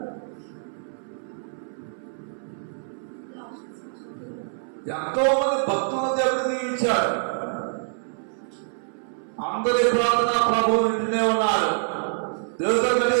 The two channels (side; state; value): left; silent; 61 dB below the other